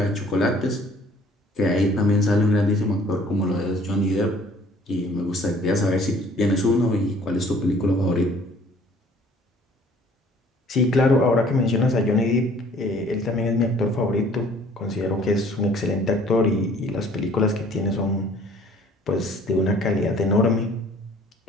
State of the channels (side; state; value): both; normal; correlation 0.55